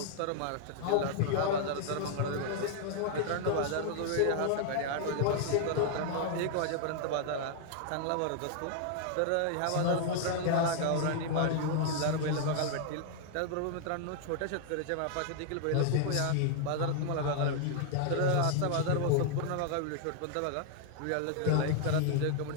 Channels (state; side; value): different; both; correlation 0.00